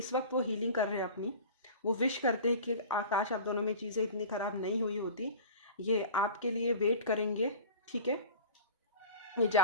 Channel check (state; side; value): inverted; both; correlation -0.39